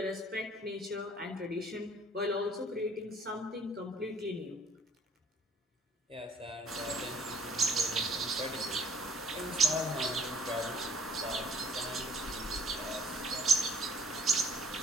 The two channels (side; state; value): both; normal; correlation 0.57